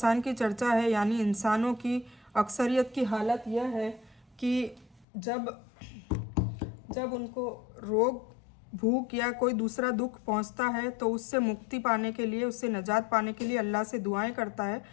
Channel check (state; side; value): drops out; right; at 5.1 s